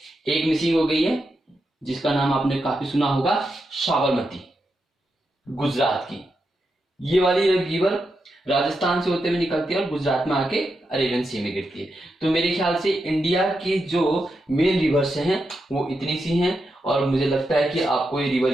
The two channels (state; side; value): normal; both; correlation 0.86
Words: एक मिसिंग हो गई है जिसका नाम आपने काफी सुना होगा, साबरमती, गुजरात की। ये वाली रिवर राजस्थान से होते हुए निकलती है और गुजरात में आके अरेबियन सी में गिरती है। तो मेरे ख्याल से इंडिया की जो मेन रिवर्स हैं वो इतनी सी हैं, और मुझे लगता है कि आपको ये